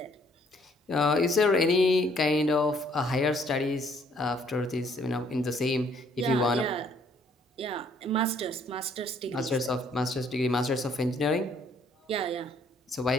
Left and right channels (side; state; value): both; normal; correlation 0.64